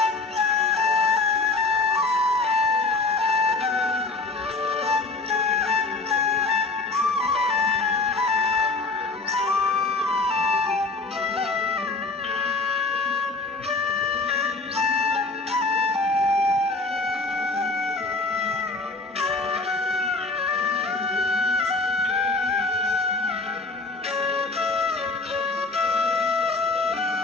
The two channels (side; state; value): right; quieter; 3.5 dB